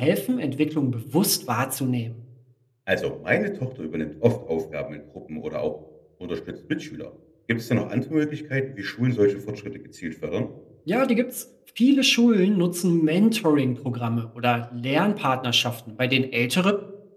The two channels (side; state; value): both; identical; correlation 1.00